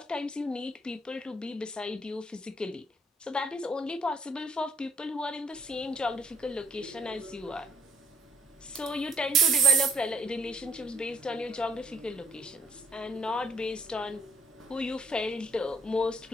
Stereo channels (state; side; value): normal; both; correlation 0.64